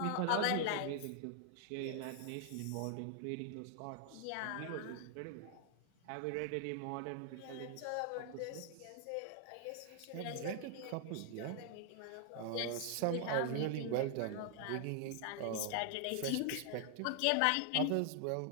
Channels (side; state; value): both; different; correlation 0.00